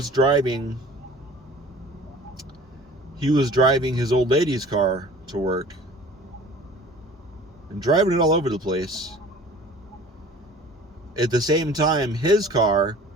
driving his old lady's car to work and driving it all over the place. At the same time, his car,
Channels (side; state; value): both; normal; correlation 0.46